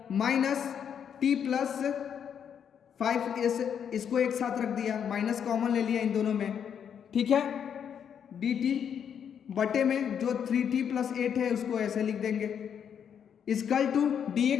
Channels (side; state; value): right; quieter; 8.1 dB